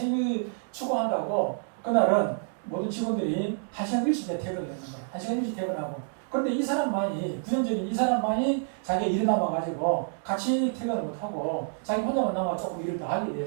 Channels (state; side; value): silent; left; digital silence